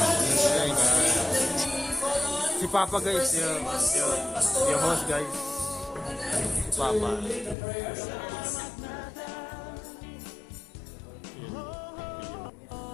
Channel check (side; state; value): right; drops out; at 7.6 s